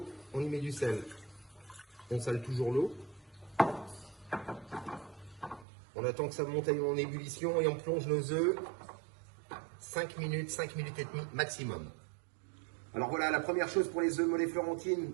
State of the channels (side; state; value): left; drops out; at 5.7 s